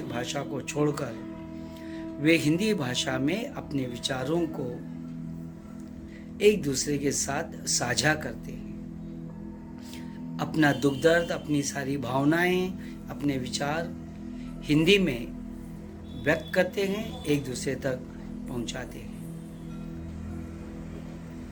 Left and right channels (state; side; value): identical; both; correlation 1.00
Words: भाषा को छोड़कर वे हिंदी भाषा में अपने विचारों को एक दूसरे के साथ साझा करते हैं। अपना दुख दर्द, अपनी सारी भावनाएं, अपने विचार हिंदी में व्यक्त करते हैं, एक दूसरे तक पहुंचाते हैं।